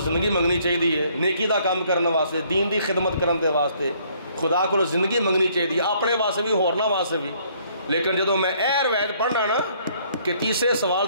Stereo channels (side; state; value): both; inverted; correlation -0.64